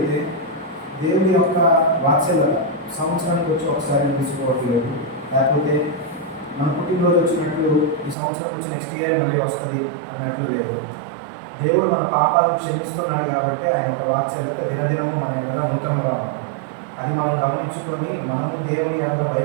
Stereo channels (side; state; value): left; drops out; at 8.2 s